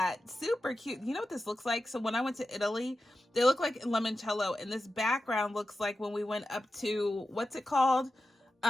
Super cute. You know what this looks like? So when I went to Italy, they look like limoncello, and this background looks like when we went up to, what's it called?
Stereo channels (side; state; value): both; normal; correlation 0.92